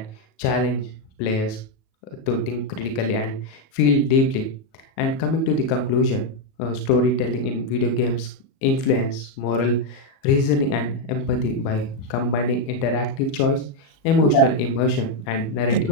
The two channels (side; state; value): right; late; 37 ms